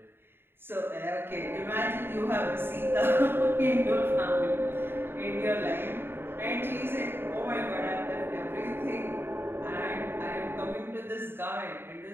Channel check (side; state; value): left; late; 0.11 ms